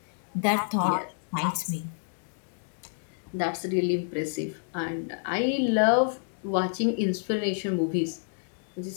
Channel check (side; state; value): right; silent; digital silence